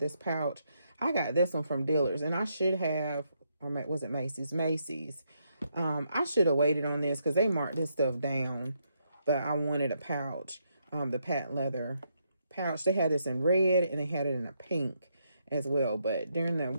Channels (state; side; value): inverted; both; correlation -0.78